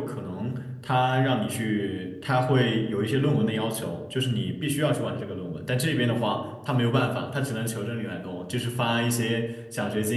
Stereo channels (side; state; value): both; identical; correlation 1.00